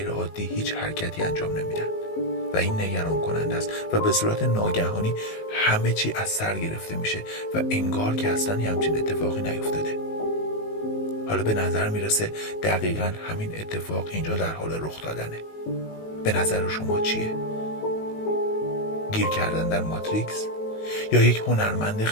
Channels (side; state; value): right; late; 19 ms